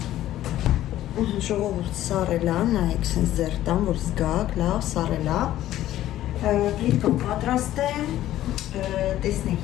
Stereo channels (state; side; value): quieter; right; 13.5 dB